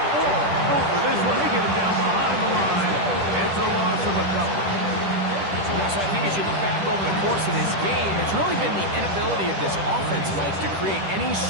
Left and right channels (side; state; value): left; late; 10 ms